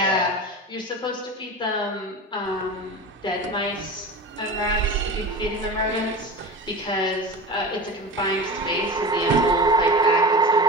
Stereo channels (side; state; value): both; normal; correlation 0.30